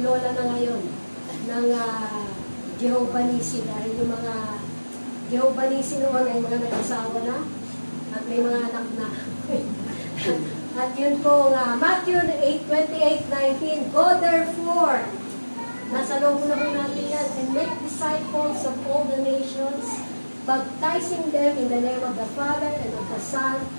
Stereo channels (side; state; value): both; inverted; correlation -1.00